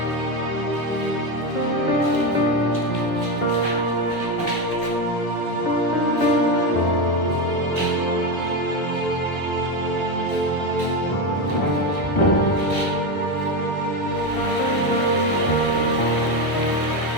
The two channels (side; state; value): right; late; 1.2 ms